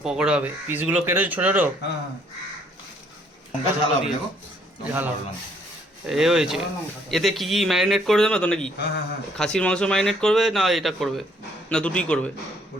পকোড়া হবে, পিসগুলো কেটেছে ছোটো ছোটো। ঝাল এ হয়েছে। এতে কি কি ম্যারিনেট করে দেবে তো নাকি? খাসির মাংস ম্যারিনেট করবে না এটা করবে, না দুটোই করবে?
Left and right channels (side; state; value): both; normal; correlation 0.65